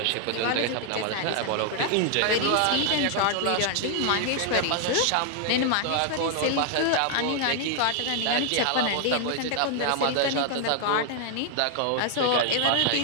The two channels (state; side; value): different; both; correlation 0.00